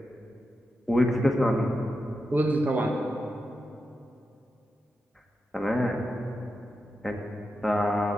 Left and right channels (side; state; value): both; normal; correlation 0.88